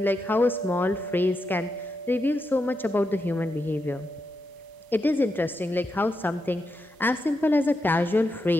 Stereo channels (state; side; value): normal; both; correlation 0.85